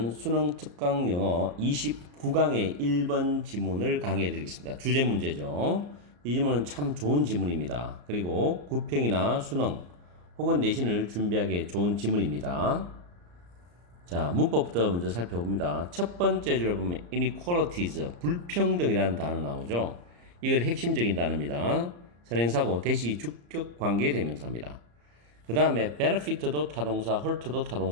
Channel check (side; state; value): left; late; 34 ms